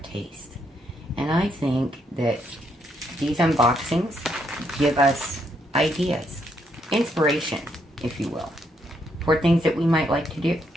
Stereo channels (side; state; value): both; normal; correlation 0.76